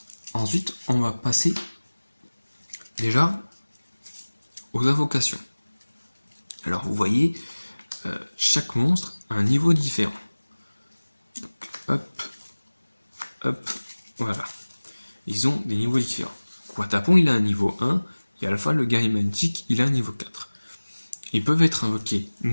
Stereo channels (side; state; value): both; inverted; correlation -1.00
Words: Ensuite, on va passer déjà aux invocations. Alors vous voyez, chaque monstre a un niveau différent. Donc, hop, voilà. Ils ont des niveaux différents. Watapon, il a un niveau 1, et Alpha, le guerrier magnétique, il a un niveau 4. Ils peuvent être invoqués